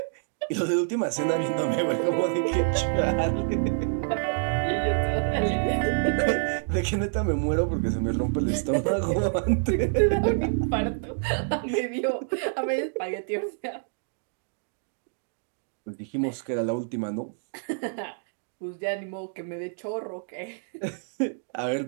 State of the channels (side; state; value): left; silent; digital silence